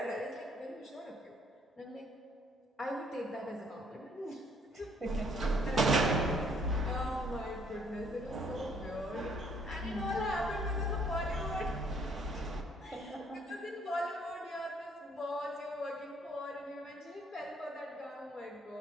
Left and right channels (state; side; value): normal; both; correlation 0.64